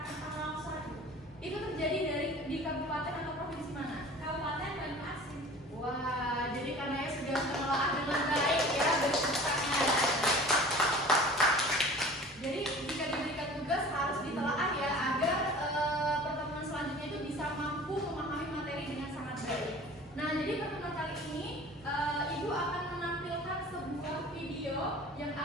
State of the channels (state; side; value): normal; both; correlation 0.43